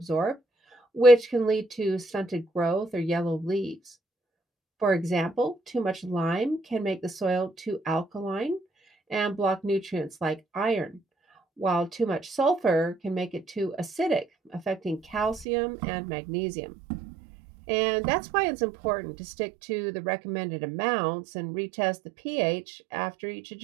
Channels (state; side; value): drops out; left; at 15.5 s